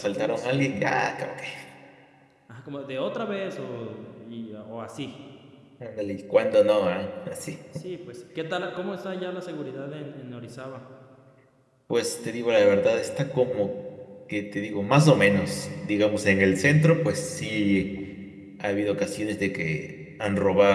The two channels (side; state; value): both; identical; correlation 1.00